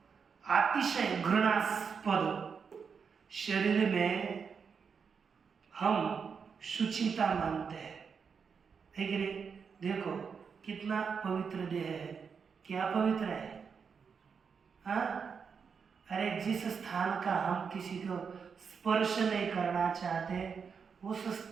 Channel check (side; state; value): left; quieter; 6.1 dB